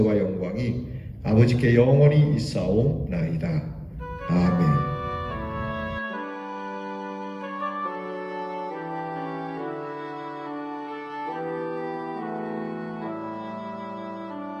영광이 아버지께 영원히 있사오나이다. 아멘.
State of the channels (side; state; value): both; identical; correlation 1.00